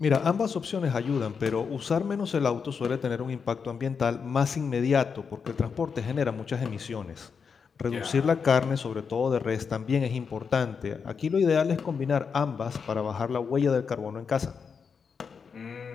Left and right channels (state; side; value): quieter; right; 6.0 dB